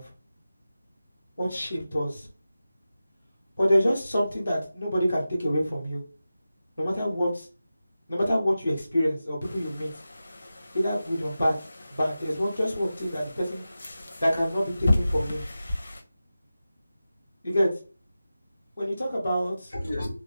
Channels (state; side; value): inverted; both; correlation -0.94